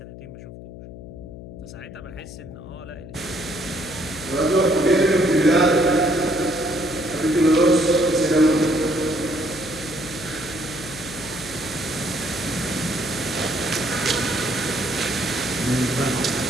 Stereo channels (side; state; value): left; noise; hum, 14 dB below the sound